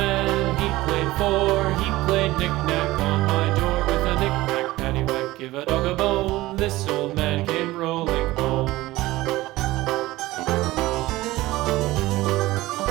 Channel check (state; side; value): quieter; left; 18.1 dB